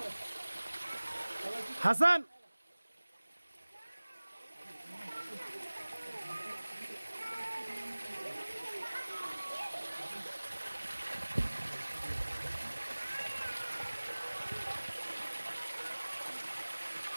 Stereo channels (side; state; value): both; inverted; correlation -1.00